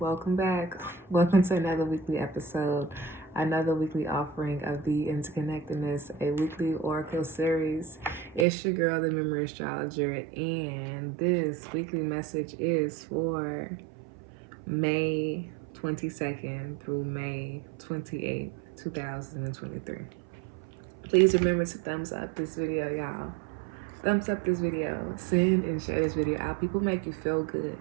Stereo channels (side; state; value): left; drops out; at 8.5 s